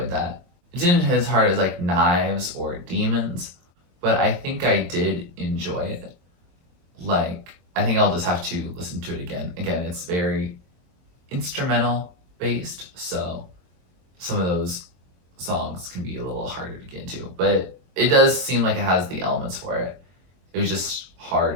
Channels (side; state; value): left; late; 23 ms